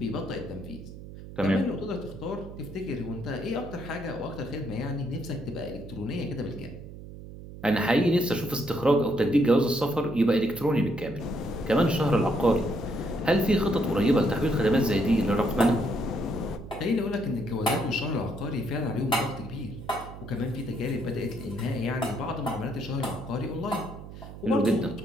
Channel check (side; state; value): right; noise; hum, 13 dB below the sound